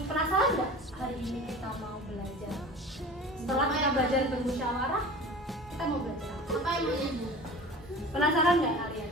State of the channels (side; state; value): both; normal; correlation 0.38